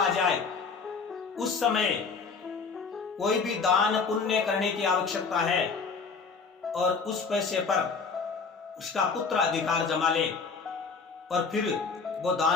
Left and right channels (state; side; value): quieter; right; 5.0 dB